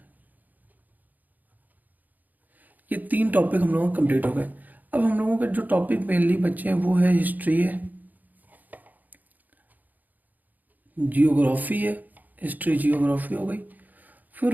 ये 3 टॉपिक हम लोगों के कंप्लीट हो गए। अब हम लोगों के जो टॉपिक मेनली बचे हैं वो है हिस्ट्री है, जियोग्राफी है। हिस्ट्री जियोग्राफी हो गई।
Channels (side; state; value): left; late; 0.083 ms